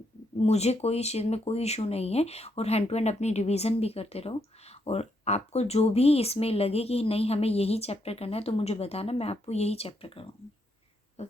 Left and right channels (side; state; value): both; normal; correlation 0.77